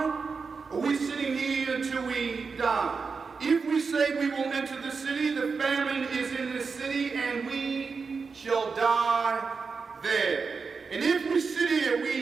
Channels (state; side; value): quieter; left; 5.0 dB